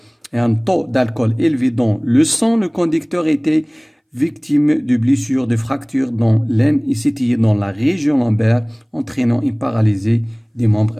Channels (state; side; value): identical; both; correlation 1.00